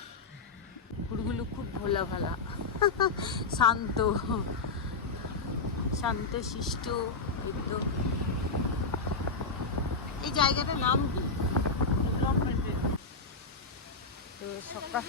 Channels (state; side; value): quieter; right; 4.0 dB